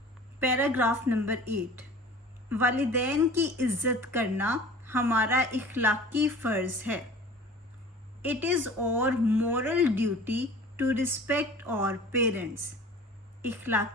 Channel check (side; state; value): both; normal; correlation 0.43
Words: पैराग्राफ नंबर 8, वालिदैन की इज्जत करना हमारा इखलाकी फ़र्ज़ है। It is our moral duty to respect our parents.